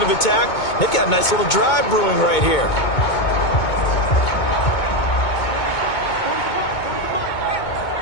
of attack. They've got a nice little drive brewing right here.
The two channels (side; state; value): right; late; 2.2 ms